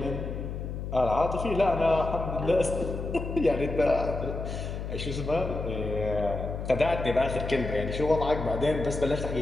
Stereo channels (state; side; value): noise; left; hum, 6 dB below the sound